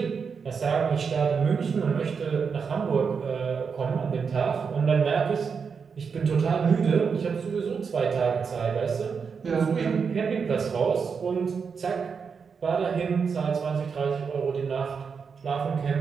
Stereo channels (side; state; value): left; quieter; 5.9 dB